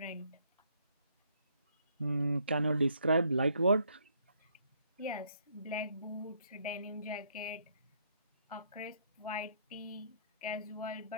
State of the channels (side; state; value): both; inverted; correlation -0.69